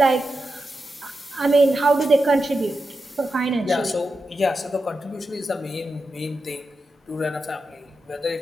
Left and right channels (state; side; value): normal; both; correlation 0.89